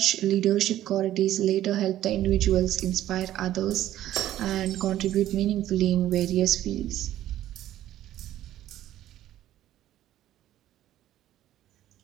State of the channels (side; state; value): left; quieter; 13.0 dB